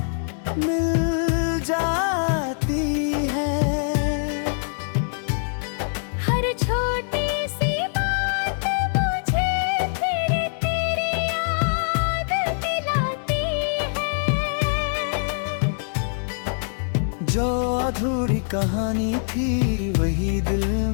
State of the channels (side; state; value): right; silent; digital silence